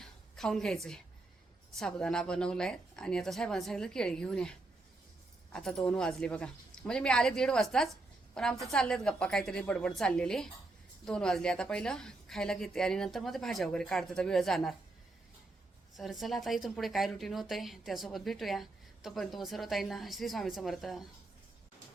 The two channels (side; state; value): left; quieter; 3.1 dB